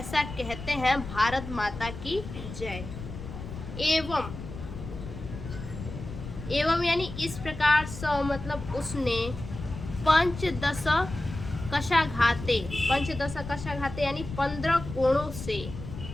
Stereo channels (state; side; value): noise; left; rumble, 10 dB below the sound